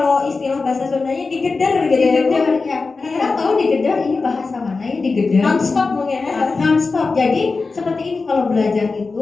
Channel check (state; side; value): quieter; right; 4.1 dB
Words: istilah bahasa Sundanya digeder gitu ya Bu. Digedar ya. Anak-anak tahu digedar ini bahasa mana ya digedar? Non-stop mungkin ya. Non-stop. Jadi seperti ini kalau belajar